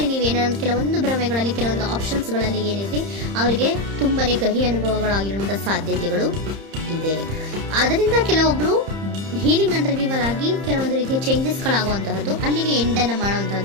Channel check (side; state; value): left; late; 30 ms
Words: ನೀವೇನಾದ್ರು ಕೆಲವೊಂದು ಭ್ರಮೆಗಳಲ್ಲಿ, ಕೆಲವೊಂದು ಆಪ್ಷನ್ಸ್ ಗಳಲ್ಲಿ ಏನಿದೆ ಅವರಿಗೆ ತುಂಬಾನೇ ಕಹಿ ಅನುಭವಗಳಾಗಿರುವಂತಹ ಸಾಧ್ಯತೆಗಳು ಇದೆ. ಅದರಿಂದ ಕೆಲವೊಬ್ರು ಹೀಲಿಂಗ್ ಅಂಡ್ ರಿನಿವಲ್ ಆಗಿ ಕೆಲವೊಂದು ರೀತಿಯ ಚೇಂಜಸ್ ಗಳಾಗುವಂತಹದ್ದು, ಅಲ್ಲಿಗೆ ಎಂಡ್ ಅನ್ನ